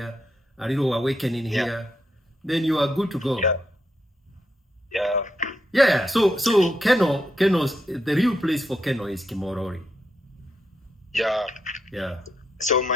a little awakening here. Then you are good to go. Yeah. So Keno's the real place for Keno is Kimorori. Yeah. So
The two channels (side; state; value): both; normal; correlation 0.81